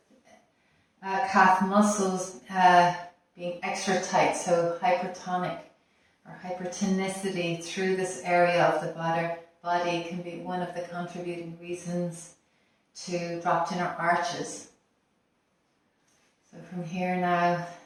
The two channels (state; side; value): identical; both; correlation 1.00